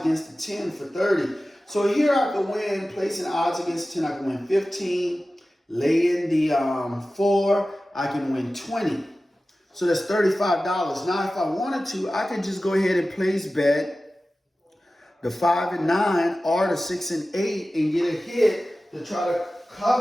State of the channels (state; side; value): normal; both; correlation 0.95